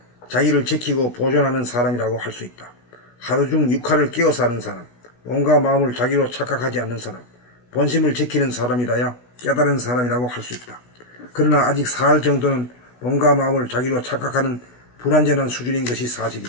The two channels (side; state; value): right; late; 16 ms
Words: 자기를 지키고 보존하는 사람이라고 할 수 있다. 하루 중 6할을 깨어 사는 사람, 몸과 마음을 자기로 착각하지 않는 사람, 본심을 지키는 사람이라야 깨달은 사람이라고 할 수 있다. 그러나 아직 4할 정도는 몸과 마음을 자기로 착각하는 불완전한 수준인 것이